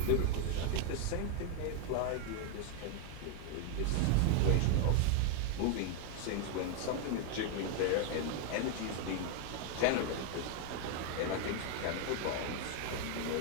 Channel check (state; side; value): different; both; correlation 0.01